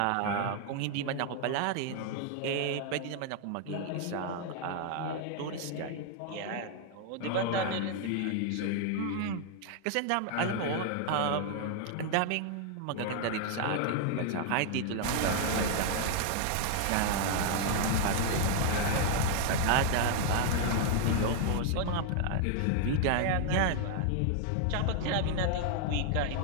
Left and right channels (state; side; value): different; both; correlation 0.00